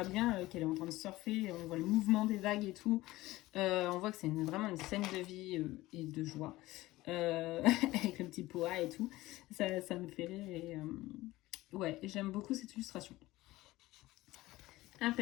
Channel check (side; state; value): right; quieter; 18.1 dB